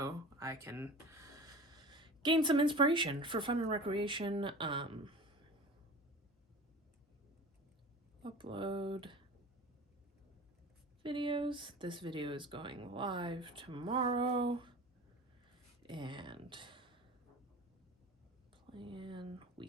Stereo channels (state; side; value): normal; both; correlation 0.36